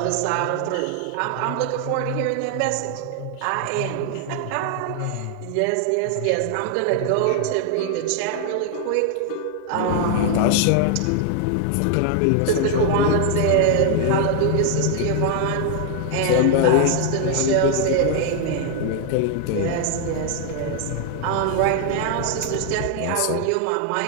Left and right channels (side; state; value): both; different; correlation 0.00